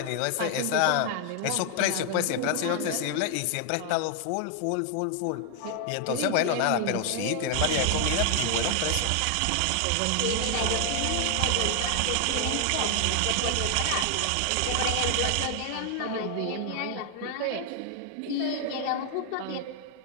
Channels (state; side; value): different; both; correlation 0.00